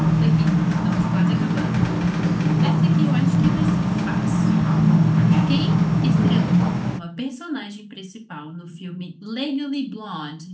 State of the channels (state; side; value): identical; both; correlation 1.00